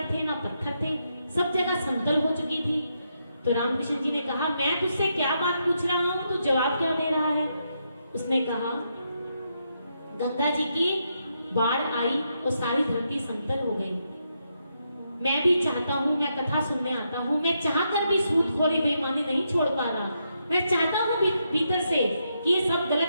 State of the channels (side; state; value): both; inverted; correlation -0.81